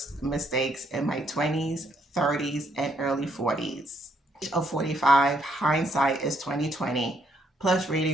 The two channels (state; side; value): normal; both; correlation 0.71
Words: mistakes in my 20s, 30s, and early 40s. Of 45, hindsight is 2020, plus